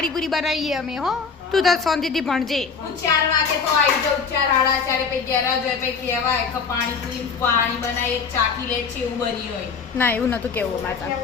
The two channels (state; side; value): quieter; right; 5.4 dB